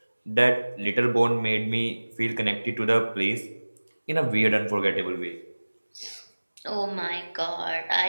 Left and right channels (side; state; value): both; inverted; correlation -1.00